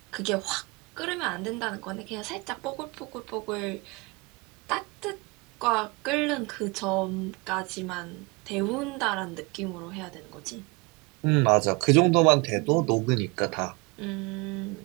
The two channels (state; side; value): quieter; left; 27.1 dB